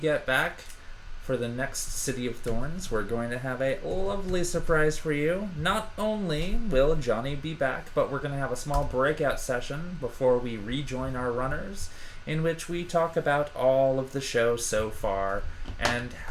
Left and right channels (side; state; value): both; identical; correlation 1.00